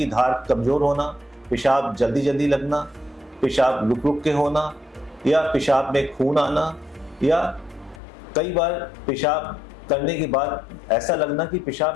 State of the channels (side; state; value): right; drops out; at 8.0 s